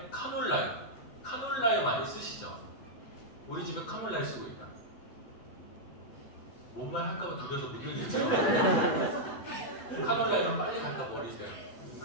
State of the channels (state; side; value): late; right; 8.0 ms